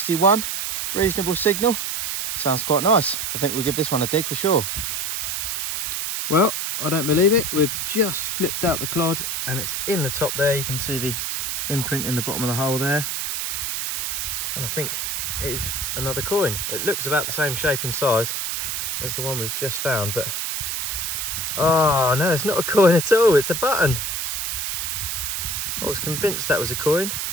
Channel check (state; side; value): noise; right; hiss, 2 dB below the sound